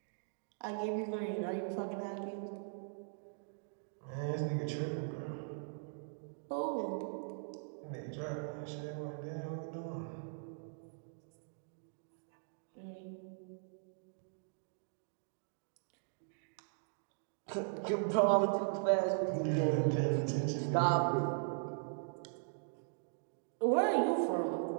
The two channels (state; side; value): silent; left; digital silence